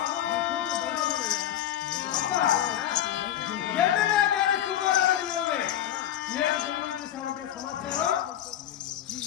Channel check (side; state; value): right; quieter; 11.6 dB